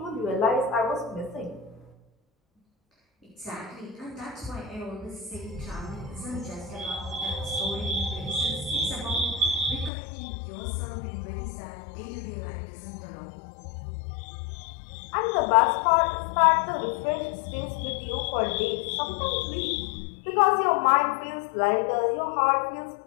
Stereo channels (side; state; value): right; drops out; at 9.9 s